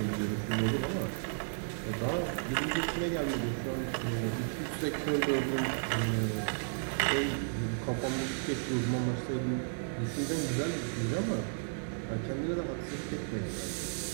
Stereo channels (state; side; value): silent; left; digital silence